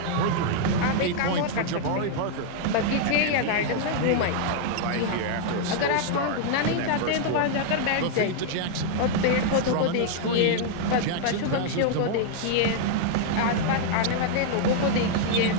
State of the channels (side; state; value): both; different; correlation -0.01